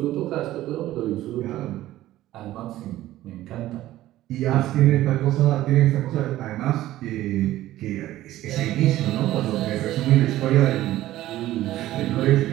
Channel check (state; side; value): quieter; left; 14.9 dB